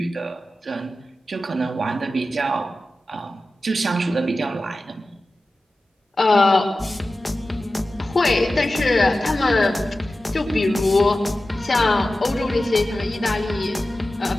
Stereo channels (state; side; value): normal; both; correlation 0.94